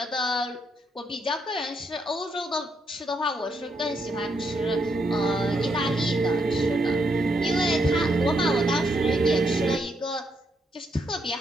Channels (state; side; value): normal; both; correlation 0.77